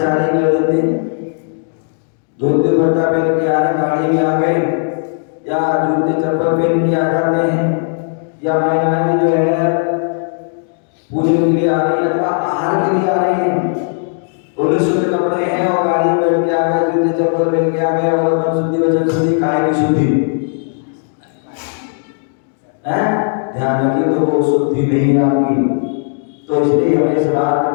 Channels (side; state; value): right; silent; 65 dB below the other